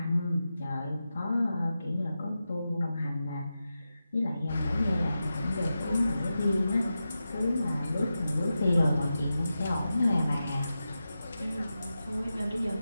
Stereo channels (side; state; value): both; inverted; correlation -0.91